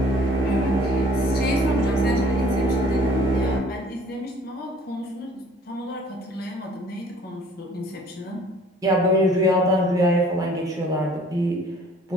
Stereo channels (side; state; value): both; normal; correlation 0.54